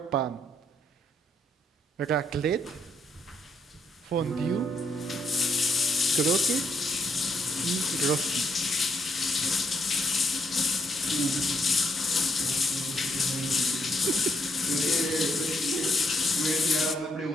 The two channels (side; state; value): both; normal; correlation 0.75